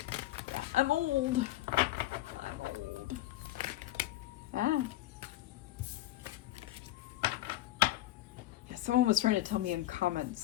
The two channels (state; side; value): quieter; right; 15.4 dB